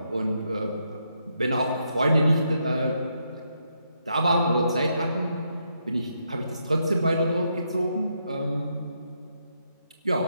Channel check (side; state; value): both; inverted; correlation -0.79